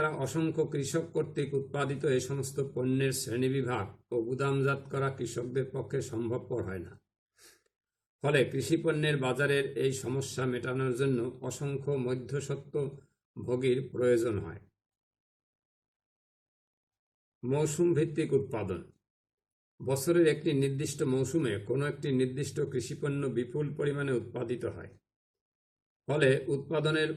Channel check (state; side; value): identical; both; correlation 1.00